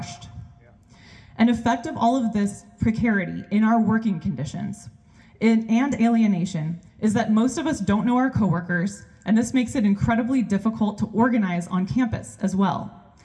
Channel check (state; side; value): identical; both; correlation 1.00